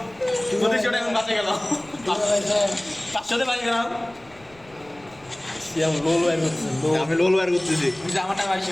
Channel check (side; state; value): left; noise; rumble, 27 dB below the sound